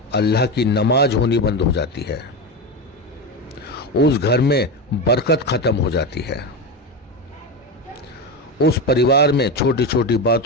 अल्लाह की नमाज होनी बंद हो जाती है, उस घर में बरकत खत्म हो जाती है। उस परिवार में छोटी छोटी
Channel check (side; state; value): both; normal; correlation 0.17